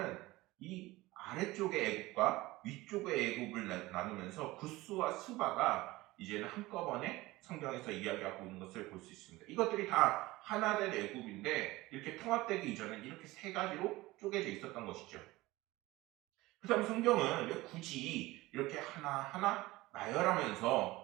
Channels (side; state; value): left; quieter; 19.5 dB